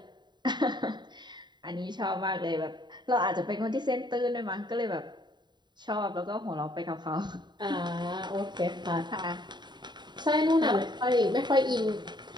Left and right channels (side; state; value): left; late; 0.21 ms